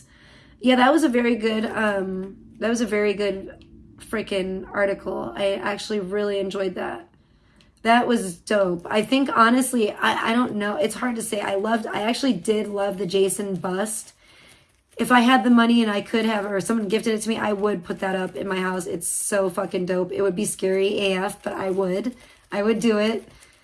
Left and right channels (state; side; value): identical; both; correlation 1.00